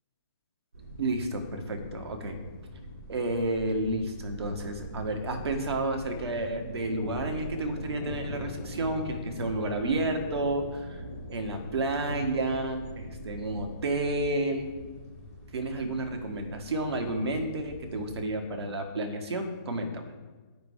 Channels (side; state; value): both; inverted; correlation -0.46